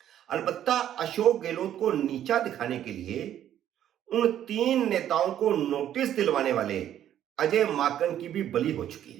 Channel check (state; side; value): quieter; left; 11.0 dB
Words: अलबत्ता अशोक गहलोत को नीचा दिखाने के लिए उन 3 नेताओं को नोटिस दिलवाने वाले अजय माकन की भी बलि हो चुकी